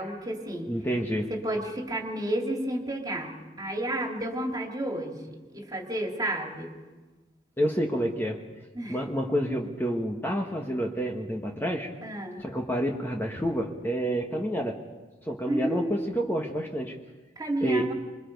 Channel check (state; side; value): normal; both; correlation 0.75